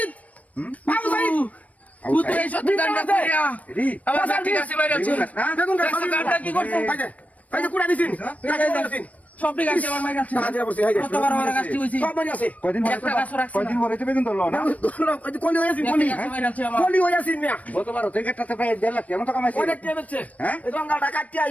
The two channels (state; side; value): late; right; 0.069 ms